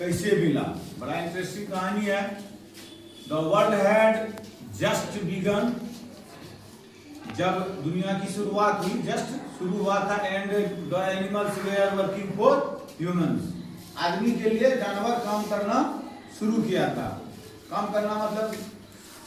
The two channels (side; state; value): both; identical; correlation 1.00